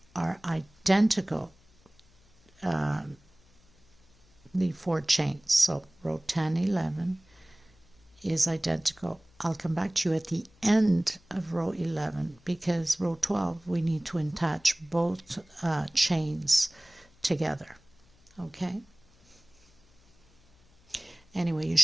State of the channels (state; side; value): noise; left; hum, 29 dB below the sound